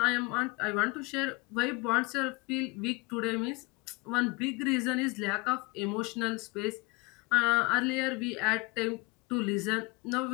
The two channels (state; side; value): quieter; right; 26.7 dB